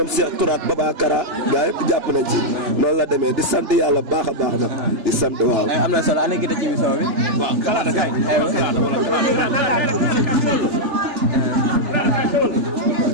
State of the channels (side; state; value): left; late; 3.4 ms